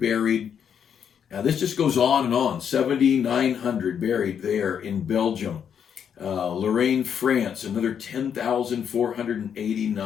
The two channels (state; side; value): quieter; right; 8.0 dB